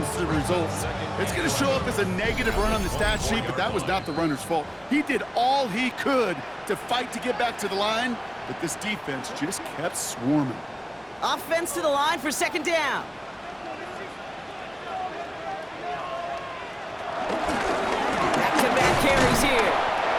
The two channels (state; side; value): identical; both; correlation 1.00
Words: to the results. It's going to show up as a negative run on the stat sheet, but that was not the runner's fault. He did all he could to fight to get back to the line, but this defense just kept swarming. Offense to the line for 2nd down. Back-to-back carries here.